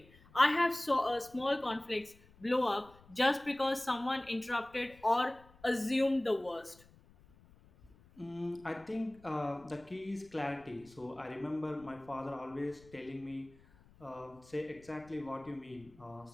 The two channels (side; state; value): left; noise; rumble, 25 dB below the sound